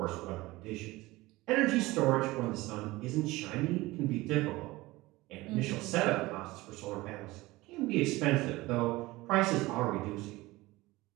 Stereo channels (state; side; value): quieter; left; 19.9 dB